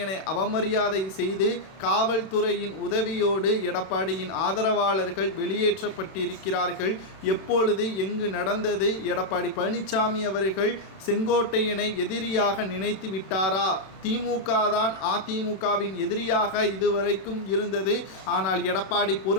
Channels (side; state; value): right; late; 31 ms